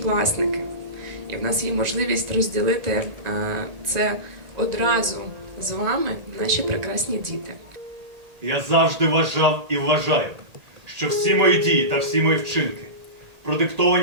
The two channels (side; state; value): left; late; 1.8 ms